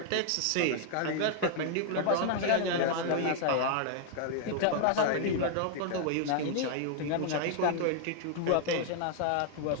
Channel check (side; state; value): both; different; correlation 0.00